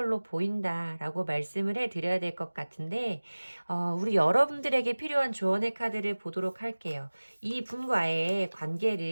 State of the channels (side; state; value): both; inverted; correlation -1.00